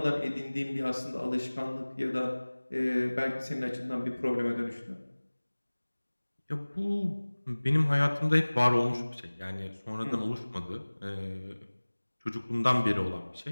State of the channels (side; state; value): both; inverted; correlation -1.00